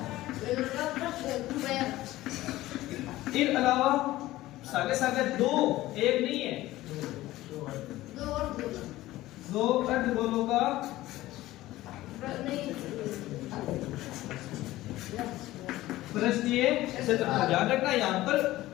इसके अलावा सागे सागे 2 एक नहीं है 2 अर्धगोलों का पृष्ठीय क्षेत्रफल। ध्यान रखना यहाँ पर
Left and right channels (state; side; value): quieter; right; 16.5 dB